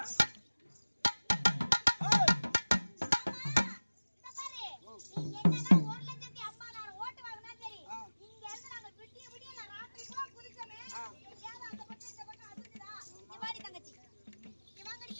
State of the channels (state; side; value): inverted; both; correlation -1.00